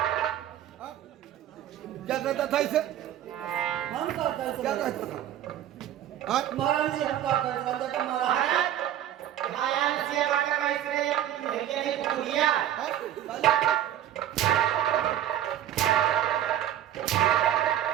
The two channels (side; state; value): left; quieter; 11.4 dB